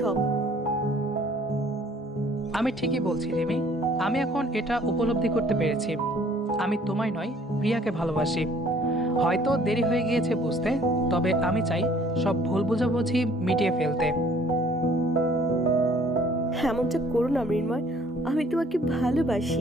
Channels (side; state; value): both; normal; correlation 0.57